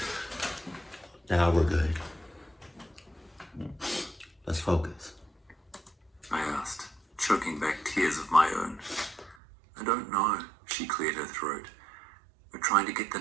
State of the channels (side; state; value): left; drops out; at 9.3 s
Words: Now we're good. Let's focus. I asked, choking back tears of my own. I don't know, she cleared her throat. We're trying to get the